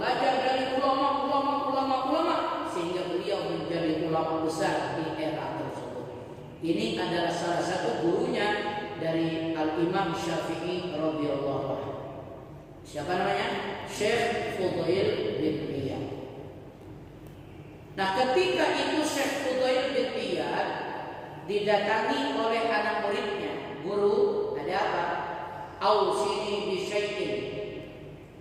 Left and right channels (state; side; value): identical; both; correlation 1.00